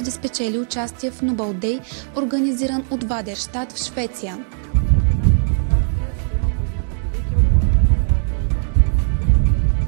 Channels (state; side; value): silent; left; digital silence